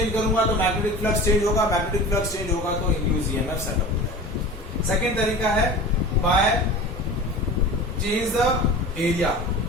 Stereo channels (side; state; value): both; normal; correlation 0.35